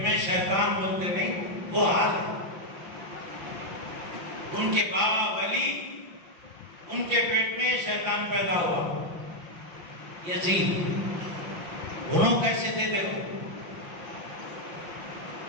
میں شیطان، بولتے نہیں وہ حال ہے. ان کے بابا ولی، ان کے پیٹ میں شیطان پیدا ہوا یزید. انہوں کیسے تھے دیکھو،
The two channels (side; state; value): left; late; 5.9 ms